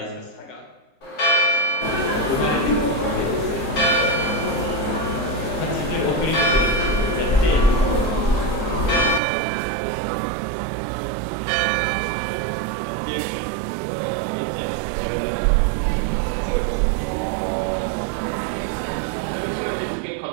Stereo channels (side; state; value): left; drops out; at 9.2 s